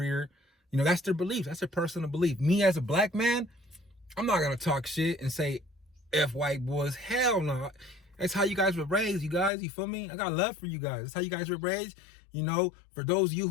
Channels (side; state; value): right; drops out; at 9.5 s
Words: You know, that's their belief. That's their personal belief. Me as a black man, I'm not going to talk shit and say F white boys. Hell no. That's how you guys were raised, you guys. You feel me? I got love for you guys. That's how you guys were raised. You know, for those of you